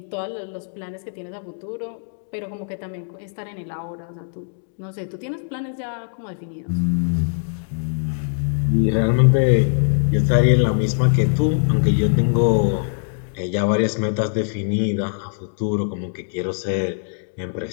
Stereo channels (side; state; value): right; silent; digital silence